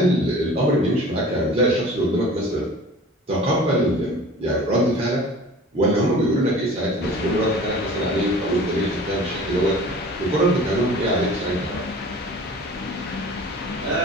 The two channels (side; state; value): both; normal; correlation 0.43